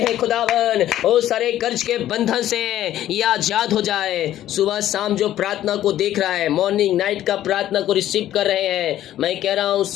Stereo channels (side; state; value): right; quieter; 12.7 dB